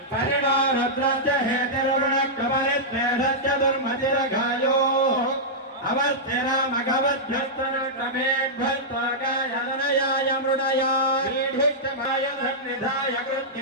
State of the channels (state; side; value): normal; both; correlation -0.10